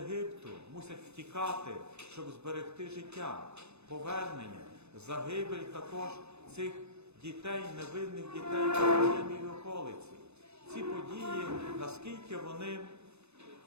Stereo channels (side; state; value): left; late; 0.80 ms